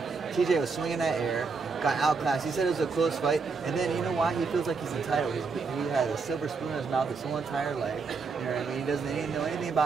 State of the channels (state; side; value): quieter; left; 4.8 dB